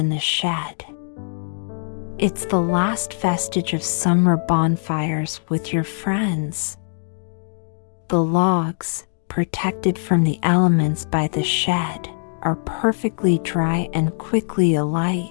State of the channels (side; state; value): right; silent; digital silence